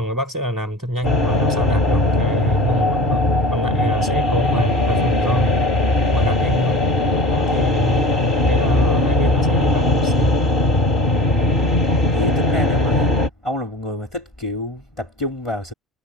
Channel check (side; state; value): both; normal; correlation 0.36